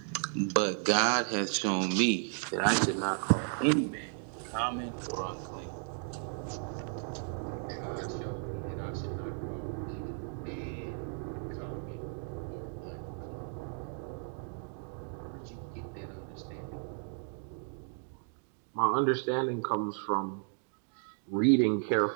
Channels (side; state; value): left; silent; 55 dB below the other